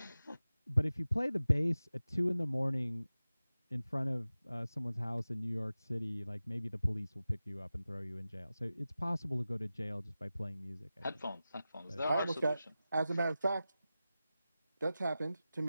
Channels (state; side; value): inverted; both; correlation -0.95